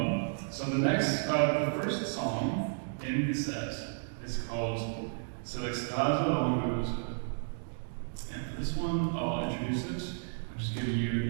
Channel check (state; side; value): silent; left; digital silence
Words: So the first song in the set is called C'est l'extase langueuse. And for this one, I'll introduce it. I'm just giving